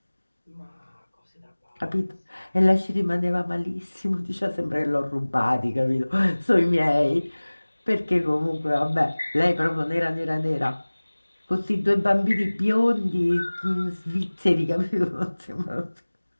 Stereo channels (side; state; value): both; inverted; correlation -1.00